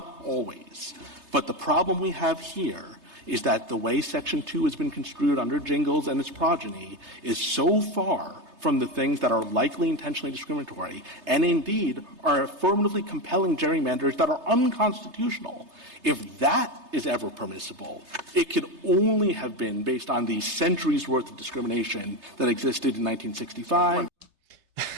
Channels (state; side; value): late; left; 3.3 ms